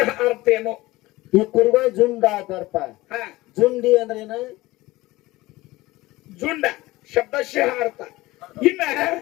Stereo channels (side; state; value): right; quieter; 19.2 dB